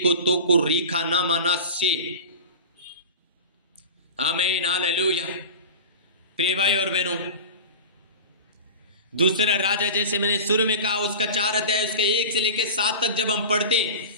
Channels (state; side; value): inverted; both; correlation -0.32